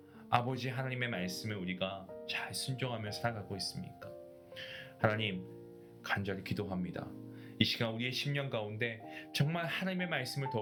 아버지 하나님의 말씀을 우리가 잘 순종하며 살아가고 있습니까? 하나님, 간절히 기도합니다. 이 시간 우리의 심령 가운데 정말 하나님의 말씀을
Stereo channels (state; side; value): identical; both; correlation 1.00